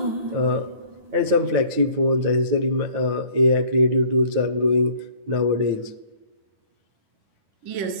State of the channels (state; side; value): late; left; 9.2 ms